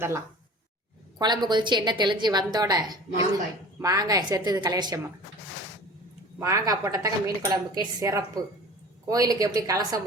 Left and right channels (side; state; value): both; normal; correlation 0.41